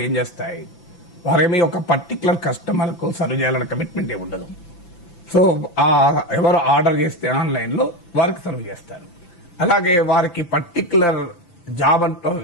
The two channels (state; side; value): late; right; 5.8 ms